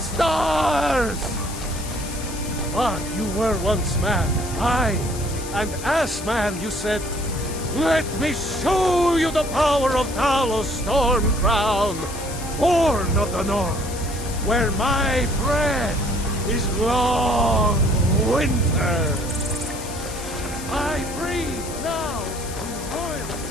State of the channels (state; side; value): noise; left; hiss, 12 dB below the sound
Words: But you were once man, aye, and as man you said, "Let me show you the power of Talos Stormcrown, born of the north, where my bread is long winter." I breathe now in